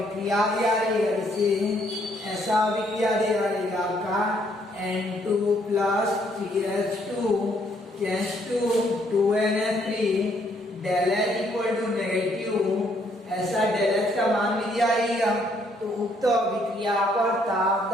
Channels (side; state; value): both; normal; correlation 0.69